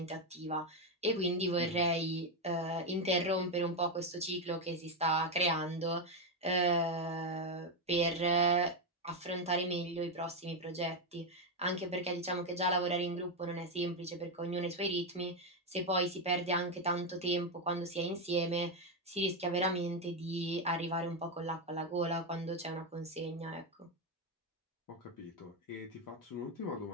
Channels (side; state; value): both; normal; correlation 0.06